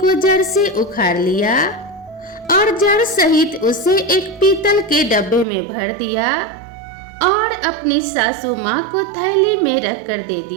जड़ से उखाड़ लिया और जड़ सहित उसे एक पीतल के डब्बे में भर दिया और अपनी सासू माँ को थैली में रखकर दे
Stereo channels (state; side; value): drops out; left; at 5.5 s